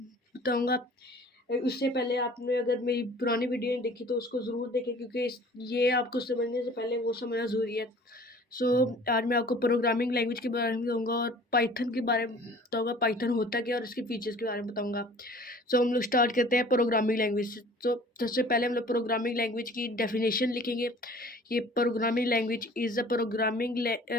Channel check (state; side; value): normal; both; correlation 0.48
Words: बताऊंगा। उससे पहले आपने अगर मेरी पुरानी वीडियो नहीं देखी तो उसको ज़रूर देखें, क्योंकि ये आपको समझने से पहले वो समझना ज़रूरी है। आज मैं आपको प्रोग्रामिंग लैंग्वेज के बारे में बताऊंगा और पाइथन के बारे में बताऊंगा, पाइथन होता क्या और इसके फीचर्स के बारे में बताऊंगा। हम लोग स्टार्ट करते हैं प्रोग्रामिंग लैंग्वेज से। तो सबसे पहले हम लोग प्रोग्रामिंग लैंग्वेज की डेफिनेशन लिखेंगे। ये programming language is a programming